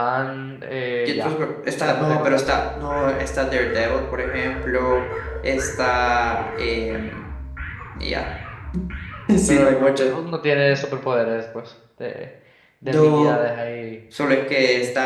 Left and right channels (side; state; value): both; identical; correlation 1.00